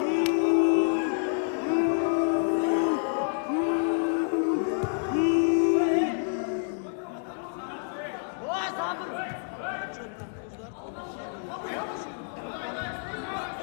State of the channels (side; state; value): right; silent; digital silence